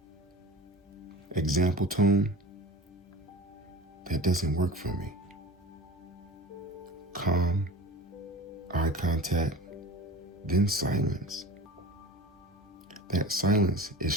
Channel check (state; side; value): normal; both; correlation 0.36